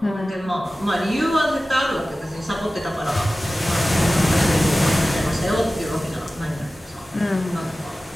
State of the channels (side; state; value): both; normal; correlation 0.96